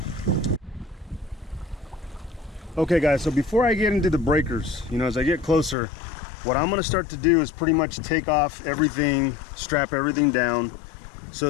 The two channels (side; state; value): right; drops out; at 5.8 s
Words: Okay guys, so before I get into the breakers, you know, as I get closer, what I'm gonna start to do is pretty much take off everything, strap everything down,